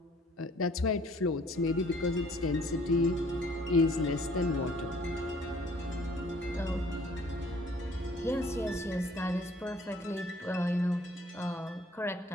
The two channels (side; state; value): both; normal; correlation 0.57